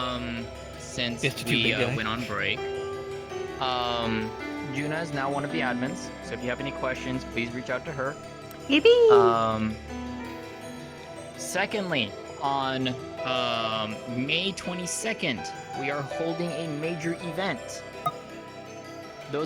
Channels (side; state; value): both; identical; correlation 1.00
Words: Since we went on break. Juna is now one of the admins, so if you have any questions, please reach out to her. Yippee! Secondly, on May 22nd, we are holding a major event.